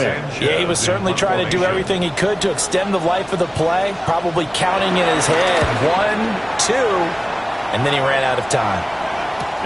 Yeah, he was certainly trying to do everything he could to extend the life of the play, probably counting in his head 1, 2, and then he ran out of time.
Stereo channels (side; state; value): both; identical; correlation 1.00